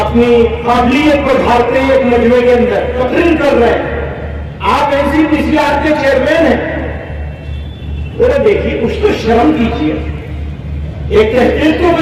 اپنی قابلیت کو ڈھالتے ہیں ایک مجمع کے اندر، تقریر کر رہے ہیں، آپ NCPCR کے چیئرمین ہیں، ذرا دیکھیے کچھ تو شرم کیجیے، ایک تحقیق تو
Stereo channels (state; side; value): identical; both; correlation 1.00